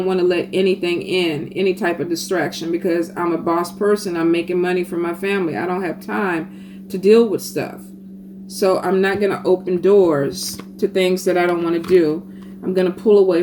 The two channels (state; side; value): identical; both; correlation 1.00